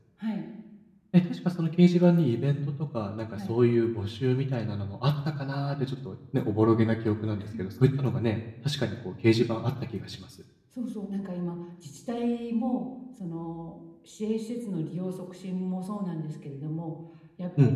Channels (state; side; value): identical; both; correlation 1.00